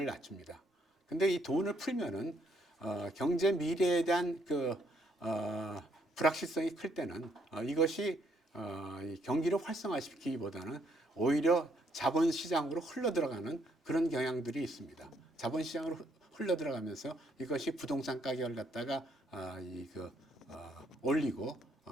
낮춥니다. 근데 이 돈을 풀면은 경제 미래에 대한 불확실성이 클 때는 이것이 이 경기를 활성화시키기보다는 오히려 자본시장으로 흘러들어가는 그런 경향들이 있습니다. 자본시장으로 흘러들어가면서 이것이 부동산 가격을 갖다가 올리고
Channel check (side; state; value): both; normal; correlation 0.71